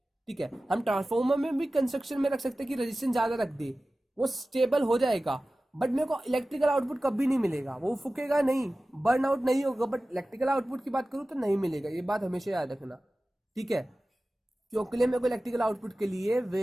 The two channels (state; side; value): normal; both; correlation 0.96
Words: ठीक है। हम ट्रांसफॉर्मर में भी कंस्ट्रक्शन में रख सकते हैं कि रेजिस्टेंस ज्यादा रख दे, वो स्टेबल हो जाएगा, बट मेरे को इलेक्ट्रिकल आउटपुट कभी नहीं मिलेगा, वो फूकेगा नहीं, बर्न आउट नहीं होगा, बट इलेक्ट्रिकल आउटपुट की बात करूँ तो नहीं मिलेगा। ये बात हमेशा याद रखना, ठीक है। क्योंकि मेरे को इलेक्ट्रिकल आउटपुट के लिए